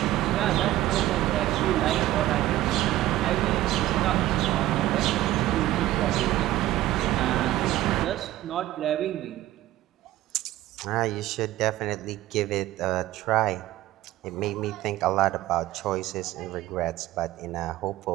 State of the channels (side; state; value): left; quieter; 15.1 dB